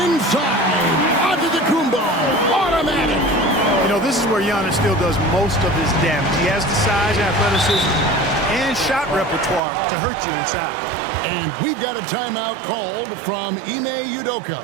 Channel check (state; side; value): drops out; left; at 9.6 s